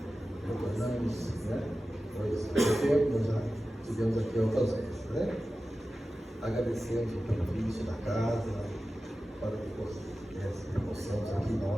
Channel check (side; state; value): both; normal; correlation 0.94